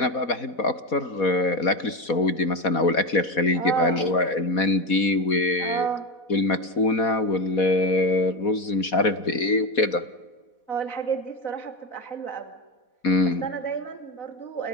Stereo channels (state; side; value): late; right; 4.2 ms